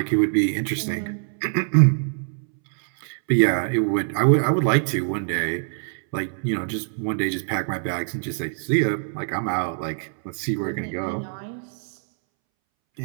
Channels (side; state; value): left; silent; 63 dB below the other